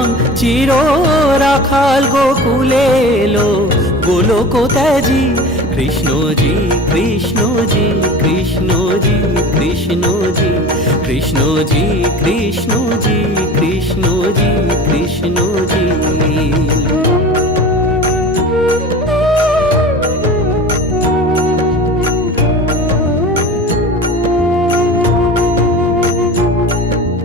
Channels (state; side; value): normal; both; correlation 0.36